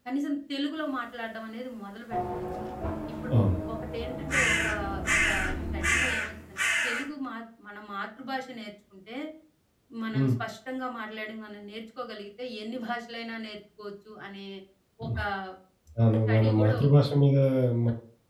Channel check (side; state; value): both; identical; correlation 1.00